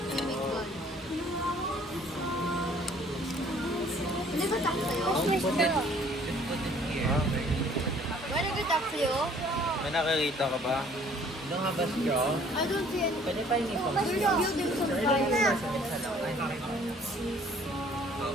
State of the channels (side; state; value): both; normal; correlation 0.57